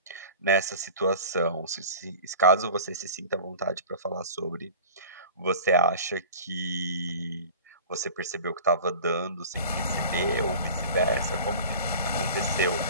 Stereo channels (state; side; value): inverted; both; correlation -0.39